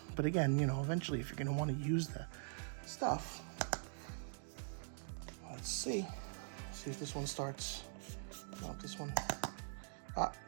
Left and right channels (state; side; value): silent; left; digital silence